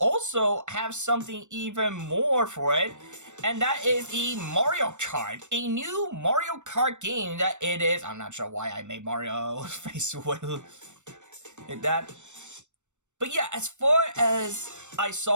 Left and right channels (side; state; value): left; late; 0.84 ms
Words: have something even more for it, and that is the Mario Kart, a new Mario Kart game that it is. I'm not sure why I made Mario face with that. But yeah, as far as I